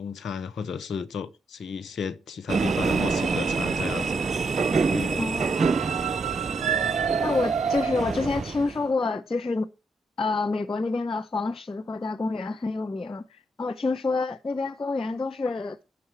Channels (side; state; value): both; normal; correlation 0.78